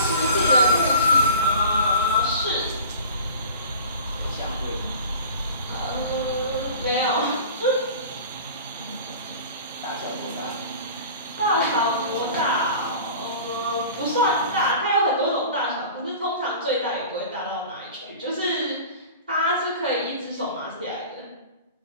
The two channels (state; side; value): inverted; both; correlation -0.41